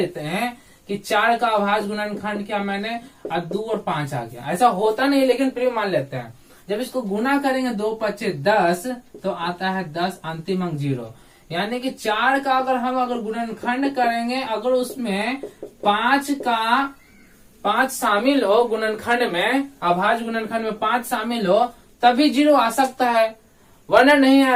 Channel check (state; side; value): identical; both; correlation 1.00